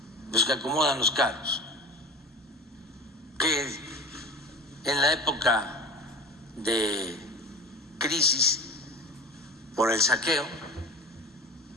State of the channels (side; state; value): both; normal; correlation 0.34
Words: los que acomodan los carros, que en la época de crisis por el saqueo